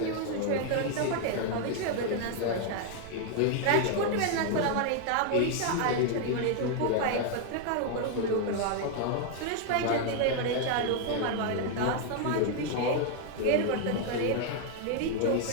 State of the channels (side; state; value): both; different; correlation 0.00